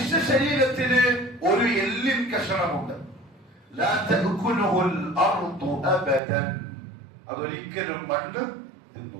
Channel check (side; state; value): left; drops out; at 6.2 s